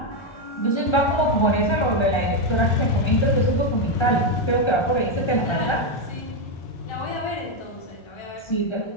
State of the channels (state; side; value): late; right; 1.3 ms